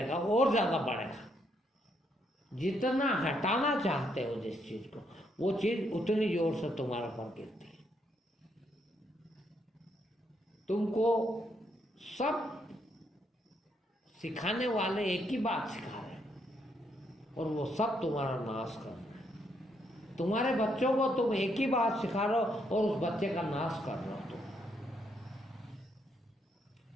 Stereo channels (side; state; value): both; normal; correlation 0.75